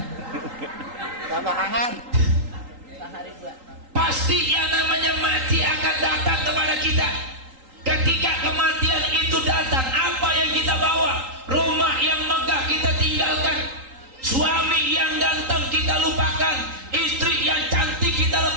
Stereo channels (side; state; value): left; late; 3.8 ms